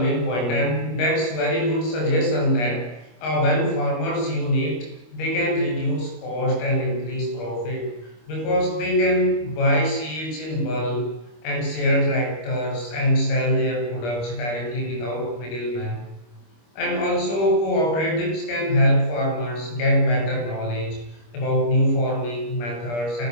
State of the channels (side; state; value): right; late; 25 ms